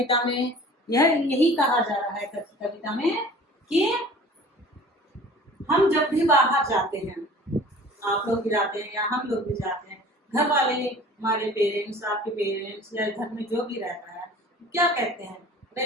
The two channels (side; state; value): both; normal; correlation 0.45